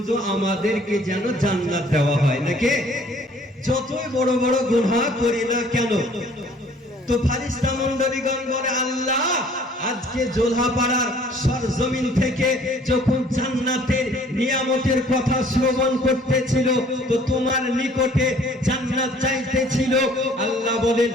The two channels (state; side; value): normal; both; correlation 0.56